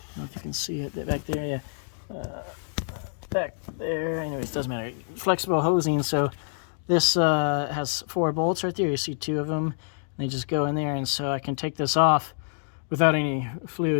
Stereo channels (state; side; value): silent; right; digital silence